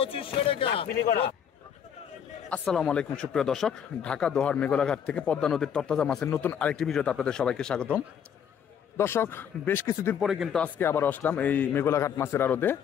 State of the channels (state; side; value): quieter; right; 8.3 dB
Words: আসসালামু আলাইকুম সুপ্রিয় দর্শক, ঢাকা দোহার মেঘলাঘাট থেকে পদ্মা নদীর তরতাজা মাছের নতুন আরেকটি ভিডিওতে আপনাদের সবাইকে স্বাগতম। দর্শক, বেশ কিছুদিন পরে কিন্তু আজকে আবার আসলাম এই মেঘলাঘাট মাছের আড়তে।